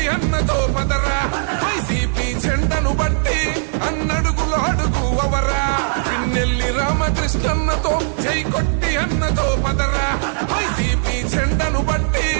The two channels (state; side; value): silent; left; 67 dB below the other